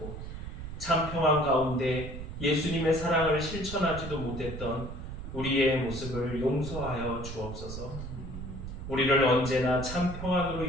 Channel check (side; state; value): right; noise; rumble, 9 dB below the sound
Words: 참 평안 가운데 예수님의 사랑을 실천하지도 못했던 우리의 모습을 용서하여 주옵소서. 우리를 언제나 참 평안으로